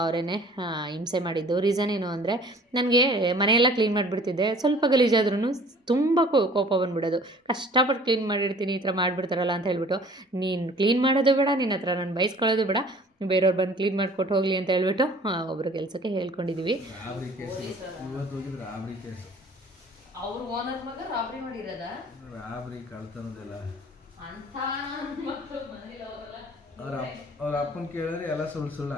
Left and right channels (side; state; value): both; normal; correlation 0.50